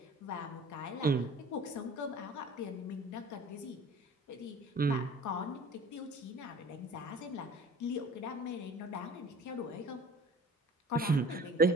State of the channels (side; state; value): both; normal; correlation 0.44